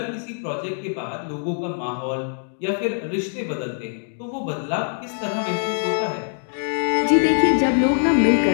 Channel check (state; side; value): silent; right; 61 dB below the other